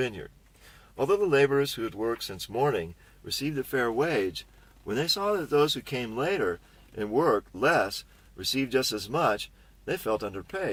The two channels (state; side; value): identical; both; correlation 1.00